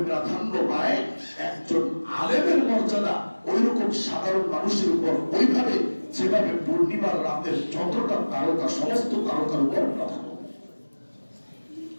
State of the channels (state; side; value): inverted; both; correlation -1.00